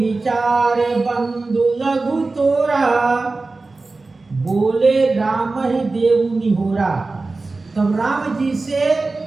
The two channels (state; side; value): quieter; left; 3.6 dB